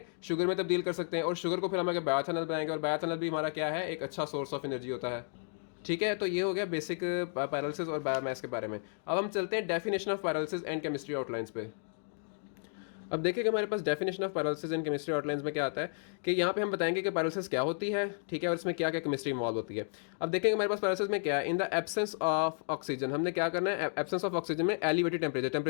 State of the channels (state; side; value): silent; right; 56 dB below the other